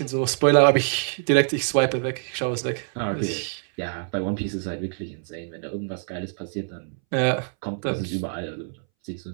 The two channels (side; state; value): left; silent; 62 dB below the other